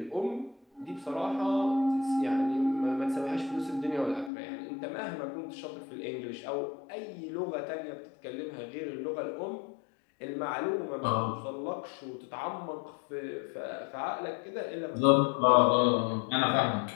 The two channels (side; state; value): right; drops out; at 4.3 s